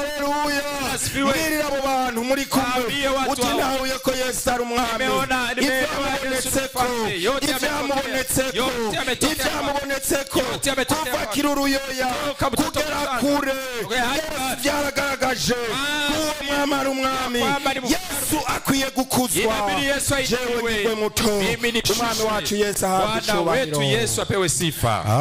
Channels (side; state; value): both; identical; correlation 1.00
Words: Mbwirire abo bantu muri kumwe. Uti ntahuye ko Yesu ari umwami. Ivyamubonetseko kuva kiruruyoya kugera kure Yesu vyaragaragaje uwo mwami ari umwami. Yesu akwiye gukuzwa. Jewe nigwe muto. Umwami wacu Yesu ahabwe icubahiro. Yesu apewe sifa.